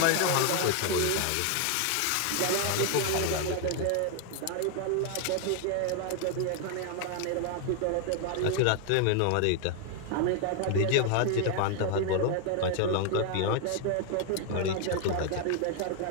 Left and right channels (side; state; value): both; different; correlation 0.00